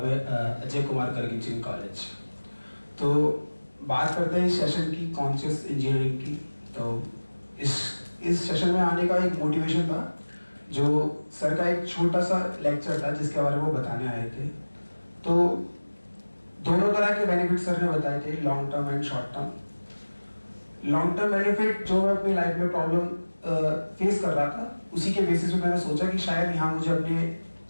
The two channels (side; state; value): both; inverted; correlation -1.00